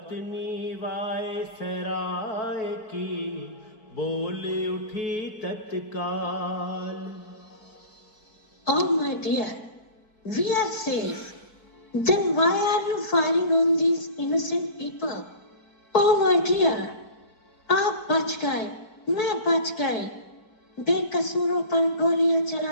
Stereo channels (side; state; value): right; late; 4.8 ms